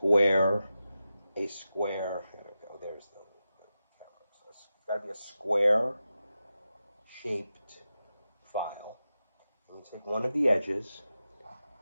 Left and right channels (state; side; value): inverted; both; correlation -0.91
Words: a square, there we go, there's the camera. So it's got to be a square shaped file. And you take one of the edges,